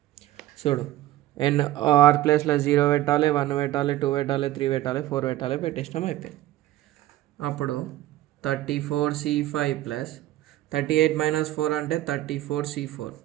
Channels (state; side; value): quieter; left; 15.0 dB